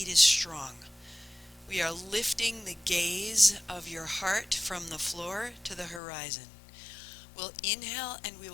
is strong. We are lifting the gaze of your heart from the floor to the horizon. We'll inhale and we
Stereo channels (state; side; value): drops out; right; at 6.0 s